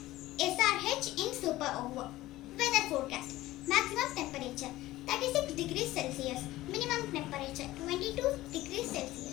SRH in Super Over. Weather forecast. Maximum temperature 36 degrees Celsius. Minimum temperature 22 degrees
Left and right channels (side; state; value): right; quieter; 16.8 dB